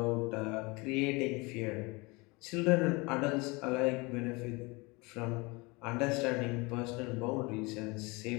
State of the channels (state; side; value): quieter; right; 26.0 dB